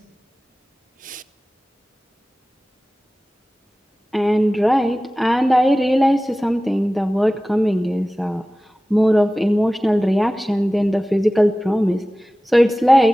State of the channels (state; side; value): normal; both; correlation 0.97